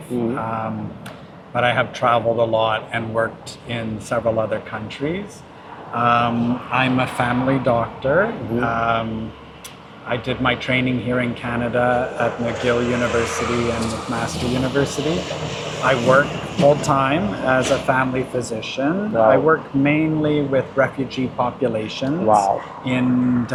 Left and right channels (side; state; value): both; identical; correlation 1.00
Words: but I have traveled a lot and worked in several other countries. I'm a family doctor. I did my training here in Canada at McGill University and McMaster University. I work full-time as a family physician. Wow. I work mainly with refugee populations in